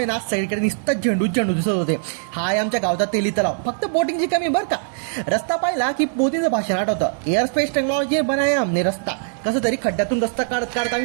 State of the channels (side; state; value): left; silent; 65 dB below the other